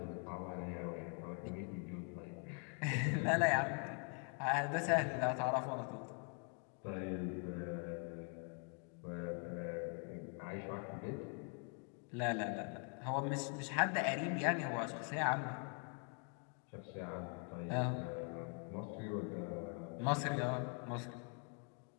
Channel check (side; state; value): right; quieter; 39.3 dB